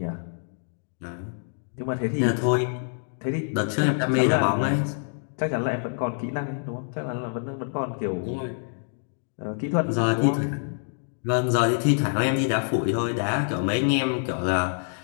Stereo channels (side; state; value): right; silent; digital silence